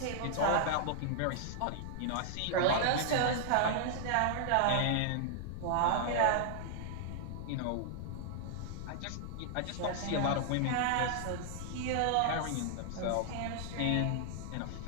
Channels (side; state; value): both; different; correlation -0.01